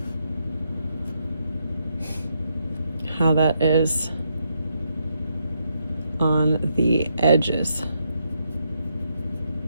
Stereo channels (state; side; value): inverted; both; correlation -0.78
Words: how that is on the edges.